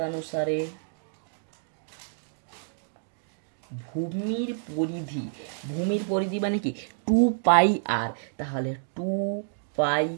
ভূমির পরিধি মানে কি 2 পাই আর, তাহলে 2 পাই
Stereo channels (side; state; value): left; silent; digital silence